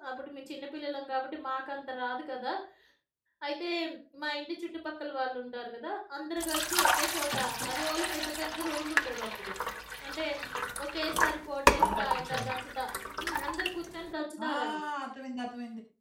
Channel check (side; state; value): both; identical; correlation 1.00